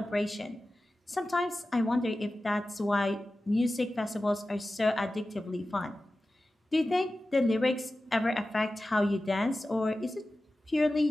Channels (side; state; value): both; normal; correlation 0.95